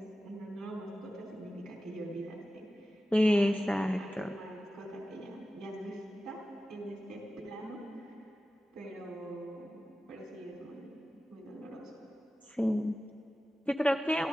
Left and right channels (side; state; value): both; normal; correlation 0.94